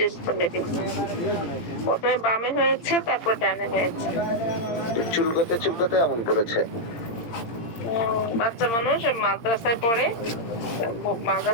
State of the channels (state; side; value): late; right; 17 ms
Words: করে দিচ্ছি, প্রথমে বামে হয়েছে, তারপর ডানে হয়েছে। চুলকোতে এমন করেছে। বাচ্চা মানুষ মাদ্রাসায় পড়ে,